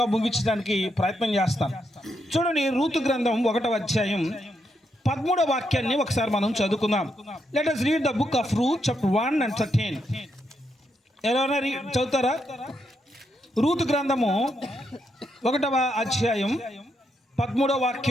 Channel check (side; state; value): both; normal; correlation 0.80